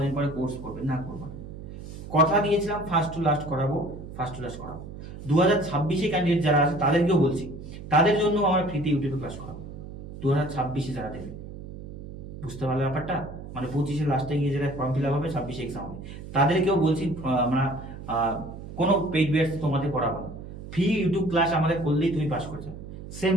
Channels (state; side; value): noise; right; hum, 12 dB below the sound